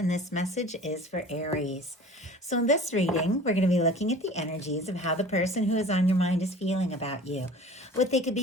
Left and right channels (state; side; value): normal; both; correlation 0.43